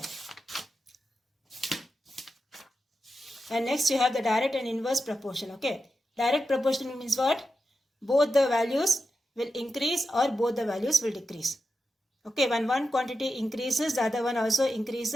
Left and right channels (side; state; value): both; normal; correlation 0.89